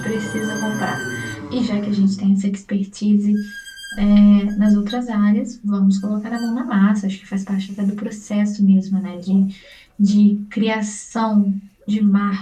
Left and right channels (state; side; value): identical; both; correlation 1.00